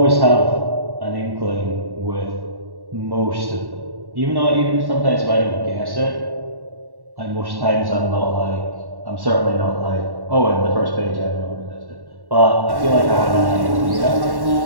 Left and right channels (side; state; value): left; late; 1.1 ms